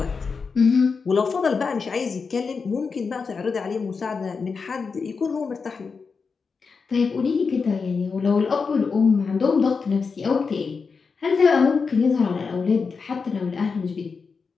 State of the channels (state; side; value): quieter; right; 5.1 dB